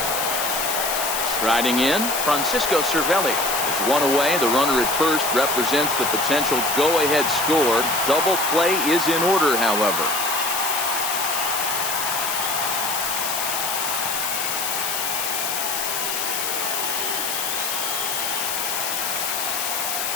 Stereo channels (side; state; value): left; noise; hiss, 1 dB below the sound